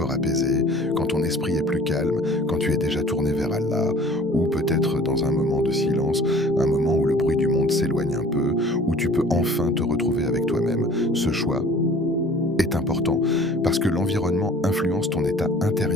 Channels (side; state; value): both; normal; correlation 0.48